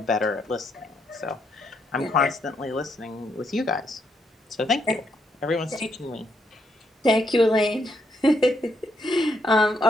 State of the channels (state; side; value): normal; both; correlation 0.76